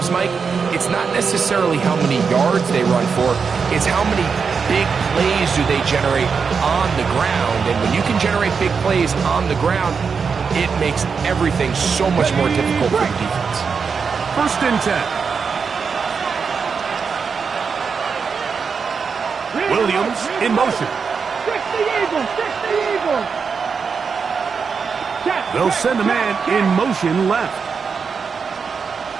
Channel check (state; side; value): quieter; left; 5.7 dB